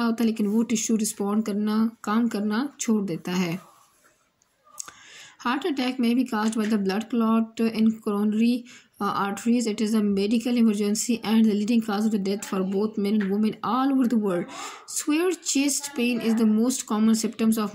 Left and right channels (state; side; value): identical; both; correlation 1.00